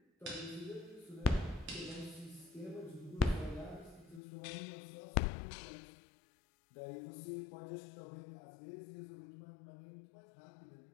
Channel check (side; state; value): right; drops out; at 4.2 s